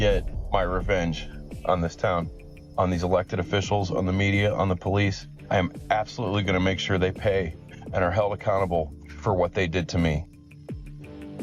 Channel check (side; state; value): both; identical; correlation 1.00